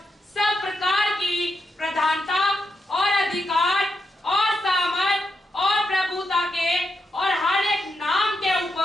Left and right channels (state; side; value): normal; both; correlation 0.84